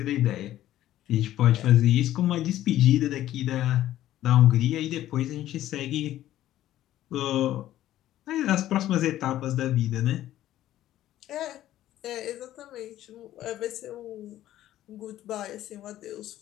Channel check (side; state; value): right; quieter; 13.4 dB